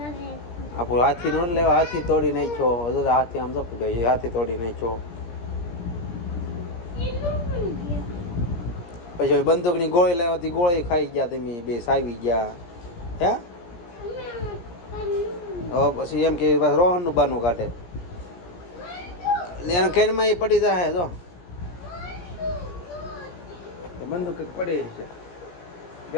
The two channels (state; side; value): late; right; 17 ms